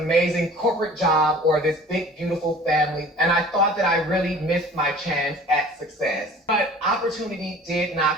corporate job or this big, beautiful family, and I thought that I really missed my chance at success. But opportunity did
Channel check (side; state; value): both; normal; correlation 0.46